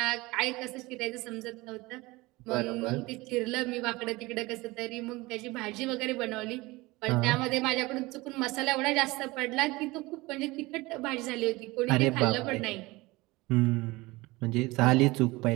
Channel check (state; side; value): quieter; left; 21.6 dB